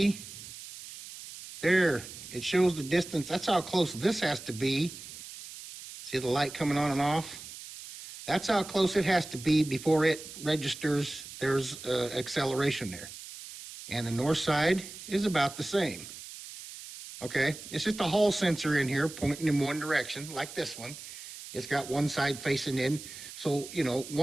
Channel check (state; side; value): noise; right; hiss, 13 dB below the sound